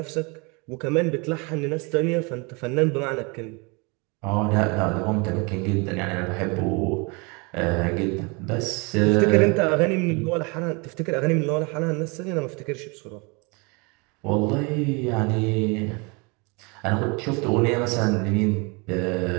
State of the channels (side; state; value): left; quieter; 29.7 dB